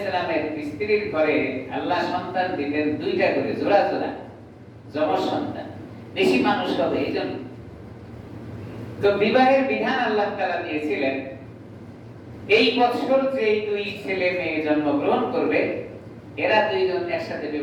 সালামের স্ত্রীর ঘরে আল্লাহ সন্তান দিতেন দুইটা করে, জোড়া জোড়া যমজ সন্তান, বেশি মানুষ হবে এই জন্য। তো বিবাহের বিধান আল্লাহ তাআলা দিয়েছিলেন, এই বছর যে দুই ছেলে মেয়ে জন্মগ্রহণ করবে এরা দুইজন একসাথে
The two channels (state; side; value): identical; both; correlation 1.00